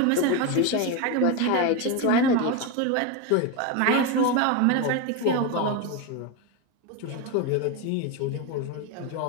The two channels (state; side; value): different; both; correlation 0.03